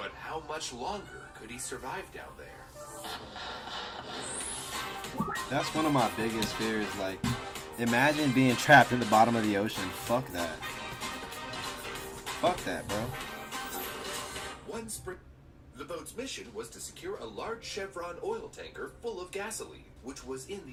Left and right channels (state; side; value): identical; both; correlation 1.00